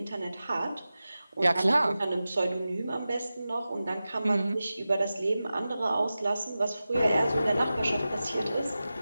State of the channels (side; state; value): both; inverted; correlation -0.94